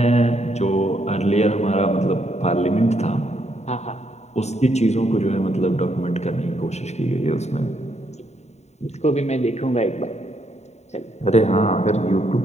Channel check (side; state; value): right; late; 0.32 ms